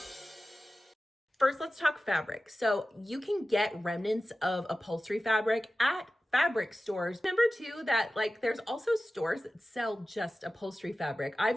First, let's talk fabric. So you can get remnants of upholstery fabric at fabric stores. Remember too that like there's also stores that sell just upholstery fabric.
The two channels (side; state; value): both; normal; correlation 0.95